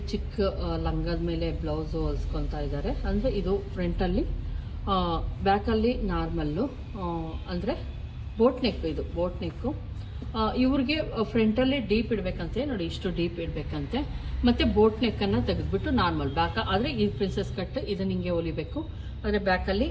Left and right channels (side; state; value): both; identical; correlation 1.00